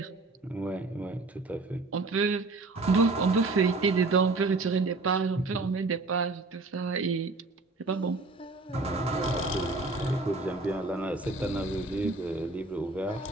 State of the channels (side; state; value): left; quieter; 3.4 dB